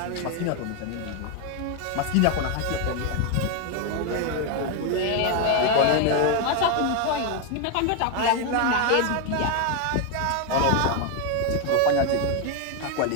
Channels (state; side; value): different; both; correlation 0.01